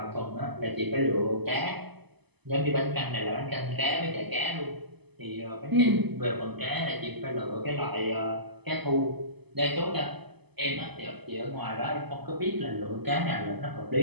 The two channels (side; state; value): left; late; 0.99 ms